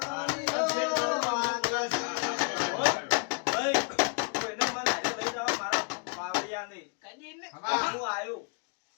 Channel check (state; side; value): quieter; right; 35.8 dB